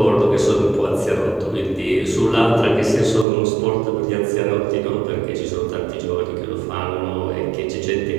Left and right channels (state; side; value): drops out; left; at 3.2 s